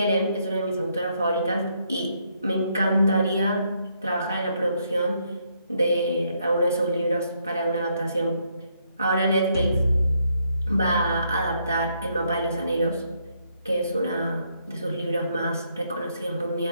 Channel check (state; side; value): inverted; both; correlation -0.74